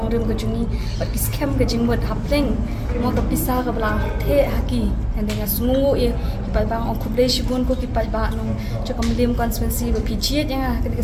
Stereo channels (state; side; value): identical; both; correlation 1.00